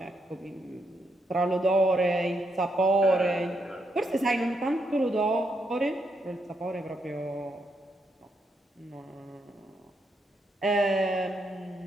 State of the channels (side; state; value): both; normal; correlation 0.79